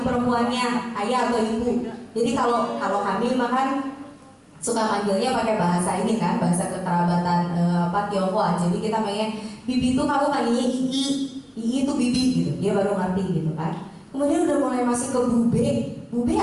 perempuannya ayah atau ibu. Jadi kalau hamil makan suka manggilnya pakai bahasa ini kan, bahasa kekerabatan Tionghoa. Jadi kita pengen bibi itu kamu panggilnya Ii itu bibi gitu, dia baru ngerti gitu kan. Kemudian udah mulai masuk ke bube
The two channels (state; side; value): identical; both; correlation 1.00